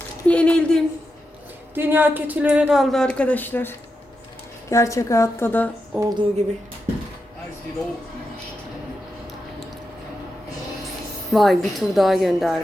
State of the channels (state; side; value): normal; both; correlation 0.87